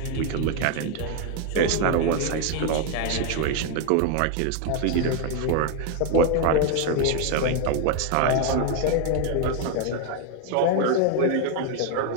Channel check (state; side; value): different; both; correlation 0.01